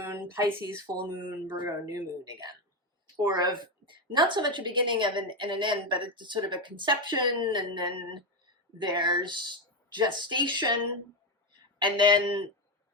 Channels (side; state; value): both; normal; correlation 0.10